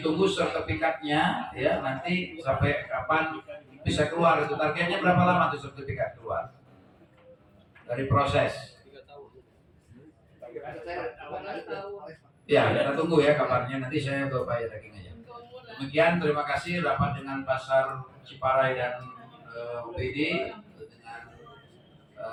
tunggu sertifikatnya ya nanti sampai kapan bisa keluar. Itu targetnya berapa lama tuh sertifikat keluar dari proses? 3 tahun. Ya, kita tunggu ya kabarnya. Nanti saya ke Pak Yakin aja. Demikian, terima kasih rapat dengan Pasar Ciparai dan OPD dengan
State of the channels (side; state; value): both; identical; correlation 1.00